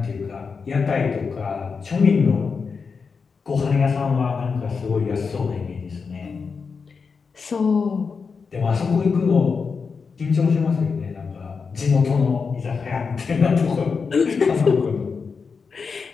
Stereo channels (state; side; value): quieter; right; 5.3 dB